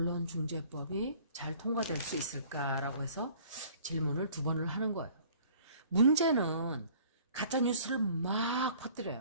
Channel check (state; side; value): inverted; both; correlation -0.53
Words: 잘 통과될 수 있을까라고 해서 질문을 2번을 하는 거예요. 문제는 가짜뉴스를 막